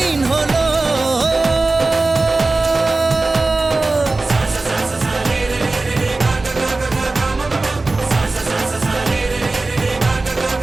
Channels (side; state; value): left; quieter; 3.3 dB